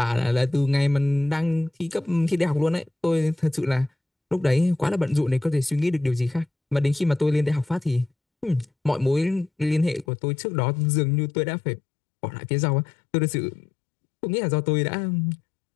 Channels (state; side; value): drops out; right; at 10.1 s